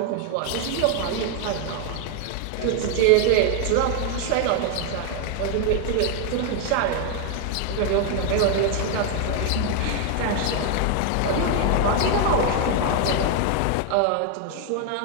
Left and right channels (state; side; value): different; both; correlation 0.01